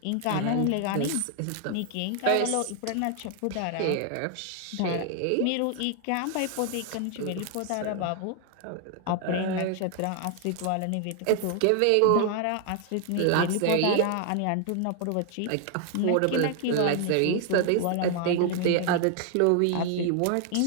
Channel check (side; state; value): both; different; correlation 0.00